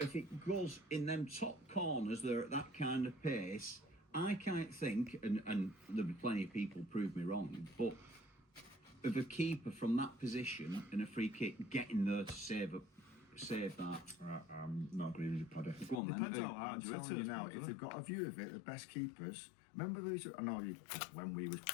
it goes in them top corners, they're at that kind of pace. I can't think, and there'll be plenty of people prove me wrong, but of a keeper from that position and a free kick getting there to save that. I'm not agreeing with you, Paddy. Go on then. Depends how I'm hard you hit telling you it. now, if they've got a view of it, the best keepers. Remember, I know you when we was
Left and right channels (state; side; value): drops out; right; at 16.0 s